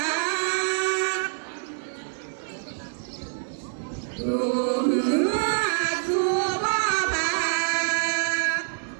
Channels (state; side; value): silent; left; 57 dB below the other